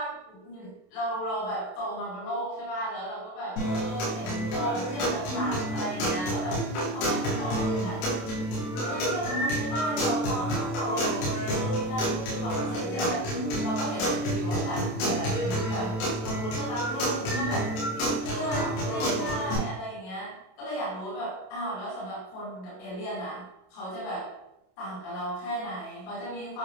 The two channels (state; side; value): late; right; 27 ms